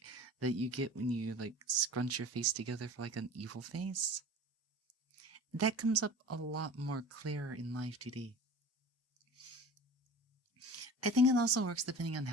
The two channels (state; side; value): normal; both; correlation 0.39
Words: that you get when you like scrunch your face together for like an evil face, that comes up a lot more clear in Live 2D. I think it also works depending on